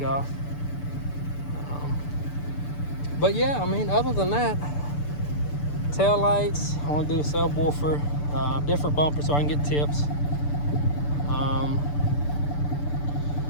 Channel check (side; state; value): right; late; 6.8 ms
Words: off. But yeah, I mean, other than that, tail lights, I want to do a subwoofer, different bumper so I can get tips.